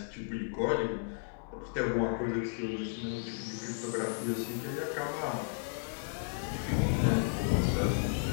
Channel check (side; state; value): right; silent; 55 dB below the other